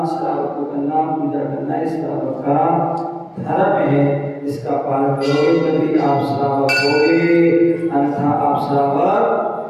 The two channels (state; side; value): identical; both; correlation 1.00